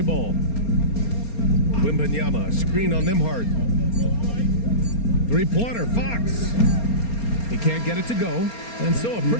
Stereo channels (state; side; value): late; right; 4.3 ms